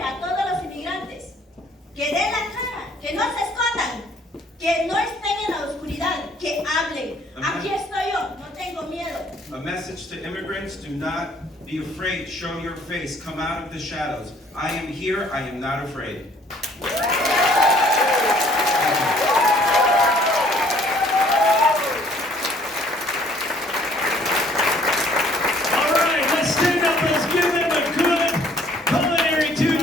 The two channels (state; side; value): normal; both; correlation 0.59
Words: a todos los inmigrantes, que den la cara, que no se escondan, que no estén en la oscuridad, que hablen. Aquí estoy yo, no tengo miedo. A message to immigrants others, do not be afraid. Show your face. Come out of the shadows. I am here. I am not afraid. All right, let's stand up. Let's give them a good Culinary